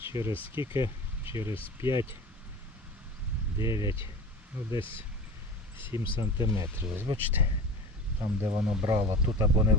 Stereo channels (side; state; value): both; normal; correlation 0.34